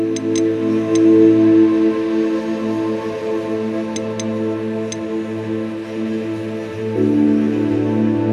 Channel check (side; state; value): both; identical; correlation 1.00